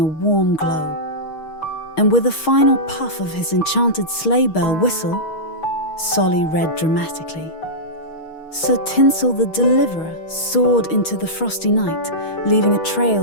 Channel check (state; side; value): late; right; 6.4 ms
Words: warm glow. And with a final puff of his enchanted sleigh bell whistle, Solly read dramatically. Sir Tinsel the Deliverer soared into the frosty night, leaving a